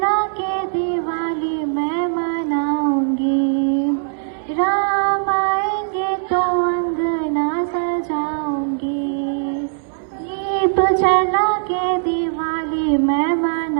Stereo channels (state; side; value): silent; left; 61 dB below the other